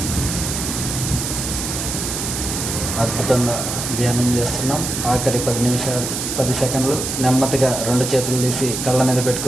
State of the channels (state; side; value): noise; right; hiss, 4 dB below the sound